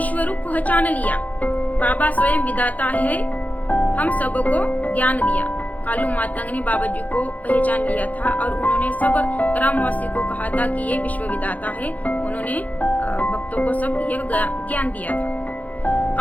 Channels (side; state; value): right; late; 0.076 ms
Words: रूप पहचान लिया। बाबा स्वयं विधाता है, हम सबको ज्ञान दिया। कालू मातंग ने बाबा जी को पहचान लिया था और उन्होंने सब ग्रामवासी को कहा था कि ये विश्व विधाता है। उन्होंने भक्तों को सब यह ज्ञान दिया था।